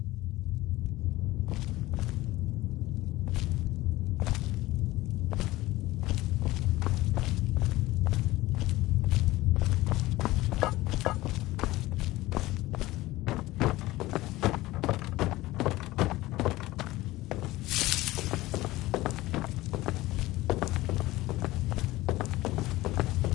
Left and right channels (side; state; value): right; quieter; 18.2 dB